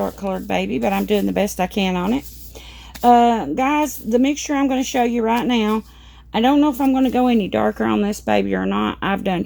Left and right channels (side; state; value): both; identical; correlation 1.00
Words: colored baby, but I'm doing the best I can on it. Guys, the mixture I'm going to show you right now, I don't know if I'm going to go any darker on this baby or not. I've done